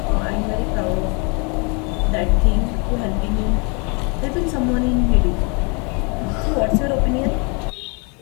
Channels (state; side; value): quieter; right; 33.2 dB